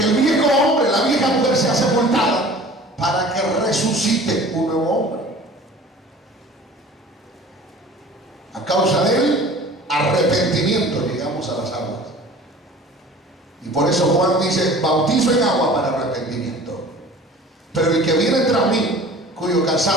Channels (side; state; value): both; normal; correlation 0.44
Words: el viejo hombre, la vieja mujer sea sepultada para que resucite un nuevo hombre. A causa del arrepentimiento llegamos a las aguas. Y por eso Juan dice, bautizo en agua para arrepentimiento. Pero el que viene tras mí, cuyo